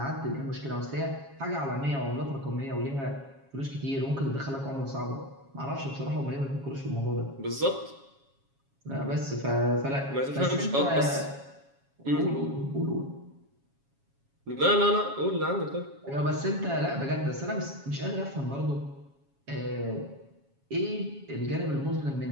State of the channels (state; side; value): late; left; 7.3 ms